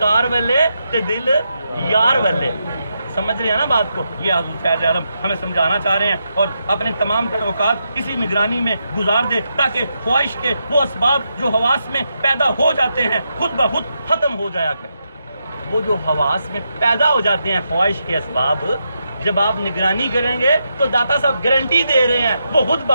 والے تے دل یار والے. سمجھ رہے ہیں نا بات کو؟ یہ حضور فیض عالم ہمیں سمجھانا چاہ رہے ہیں، اور اپنے تمام تر اوقات اسی نگرانی میں گزار دے تاکہ خواہش کے وہ اسباب جو حواس میں پیدا ہو جاتے ہیں خود بخود ختم ہو جایا کریں۔ وہ جو حواس میں پیدا ہو جاتے ہیں خواہش کے اسباب، جب آپ نگرانی کریں گے تو داتا صاحب گارنٹی دے رہے ہیں وہ خود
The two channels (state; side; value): inverted; both; correlation -0.84